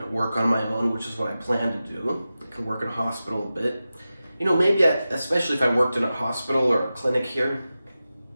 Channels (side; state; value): both; inverted; correlation -0.94